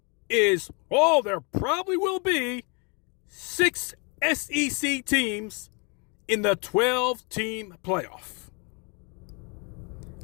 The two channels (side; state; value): right; quieter; 33.5 dB